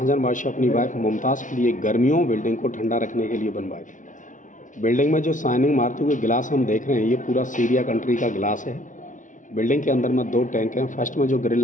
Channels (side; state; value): right; late; 0.37 ms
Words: बादशाह अपनी वाइफ मुमताज़ के लिए गर्मियों बिल्डिंग को ठंडा रखने के लिए बनवाए थे। बिल्डिंग में जो शाइनिंग मारते हुए गिलास हम देख रहे हैं, ये पूरा सीरिया कंट्री का गिलास है। बिल्डिंग के अंदर में 2 टैंक हैं। फर्स्ट में जो ग्रिल